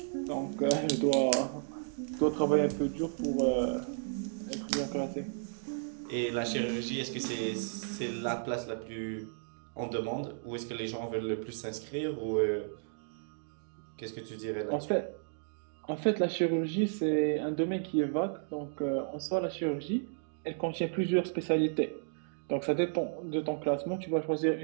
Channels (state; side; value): silent; left; digital silence